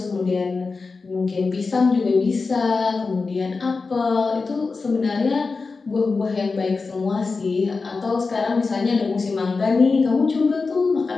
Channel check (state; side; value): quieter; right; 4.3 dB